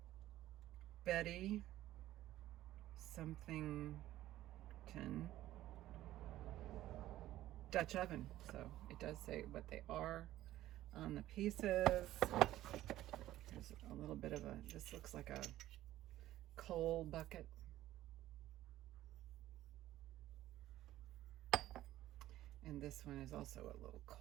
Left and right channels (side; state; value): left; quieter; 14.4 dB